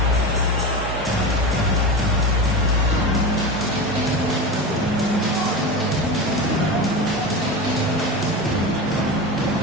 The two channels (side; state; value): both; normal; correlation 0.24